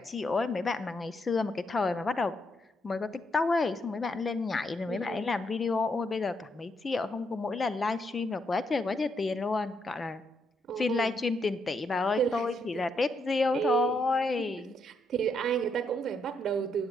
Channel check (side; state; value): both; normal; correlation 0.77